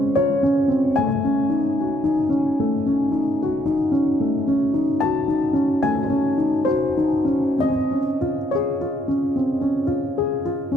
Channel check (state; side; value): normal; both; correlation 0.72